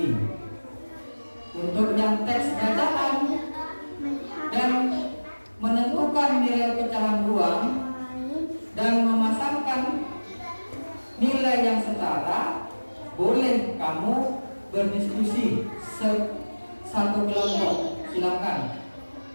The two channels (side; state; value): both; inverted; correlation -1.00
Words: Untuk yang teks bacaan dan menentukan nilai pecahan uang dan memasangkan nilai yang setara, boleh kamu berdiskusi satu kelompok. Silakan.